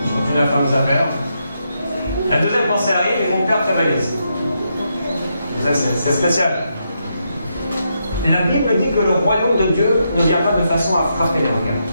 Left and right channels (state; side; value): inverted; both; correlation -0.81